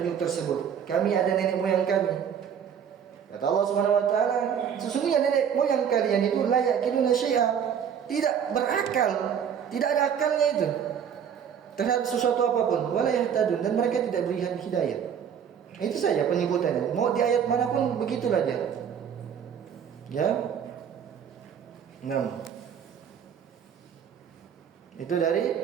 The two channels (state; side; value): quieter; left; 8.1 dB